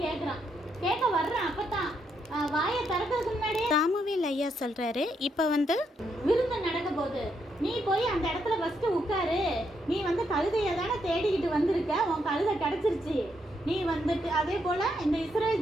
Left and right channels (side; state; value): both; normal; correlation 0.78